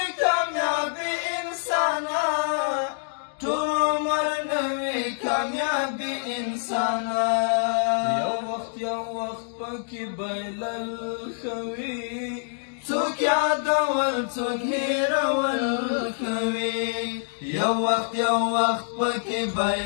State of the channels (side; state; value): right; silent; digital silence